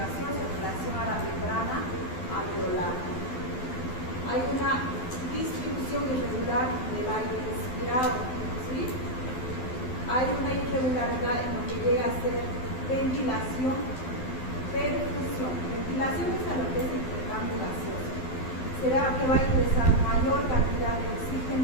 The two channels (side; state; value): right; late; 12 ms